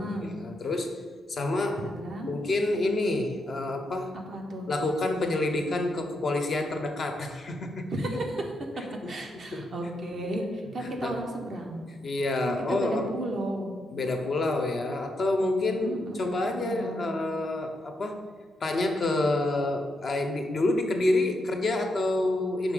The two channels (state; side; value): normal; both; correlation 0.81